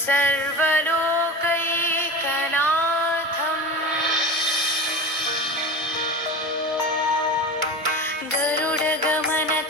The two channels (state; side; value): normal; both; correlation 0.30